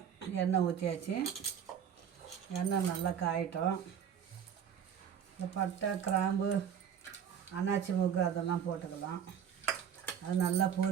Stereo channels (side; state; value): left; quieter; 8.4 dB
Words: எண்ணெய் ஊற்றியாச்சு. எண்ணெய் நல்லா காயட்டும். இந்த பட்டை, கிராம்பு, அன்னாச்சி மூக்கு அதெல்லாம் போட்டுக்கலாம். அது நல்லா